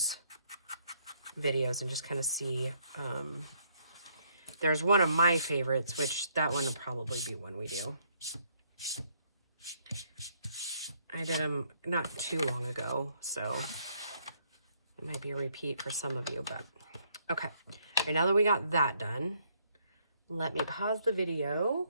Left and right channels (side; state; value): both; inverted; correlation -0.69